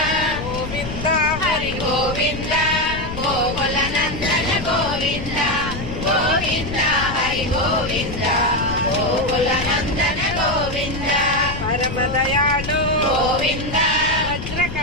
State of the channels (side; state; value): left; noise; rumble, 8 dB below the sound